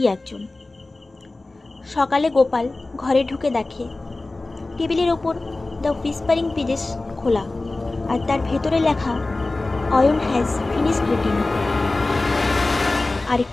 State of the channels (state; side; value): quieter; right; 3.1 dB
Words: একজন। সকালে গোপাল ঘরে ঢুকে দেখে টেবিলের ওপর দ্য হুইসপারিং পেজেস খোলা, আর তার ভেতরে লেখা, অয়ন হ্যাজ ফিনিশড রিডিং।